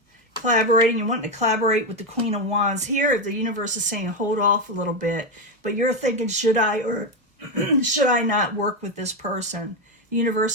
Collaborating, you're wanting to collaborate with the Queen of Wands. Here, the universe is saying hold off a little bit, but you're thinking, should I or should I not work with this person? The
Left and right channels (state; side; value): normal; both; correlation 0.10